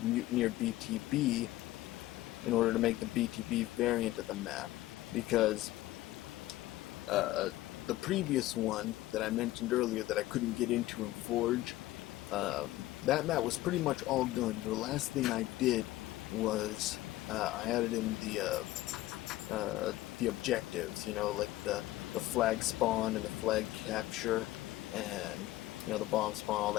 Mutineer BTB in order to make the BTB variant of the map, because the previous one that I mentioned earlier that I couldn't get into in Forge, that map was pretty much all done. The last thing I did was I added in the objectives, like the flag spawn and the flag capture, and the bomb spawn, all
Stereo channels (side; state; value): right; quieter; 16.5 dB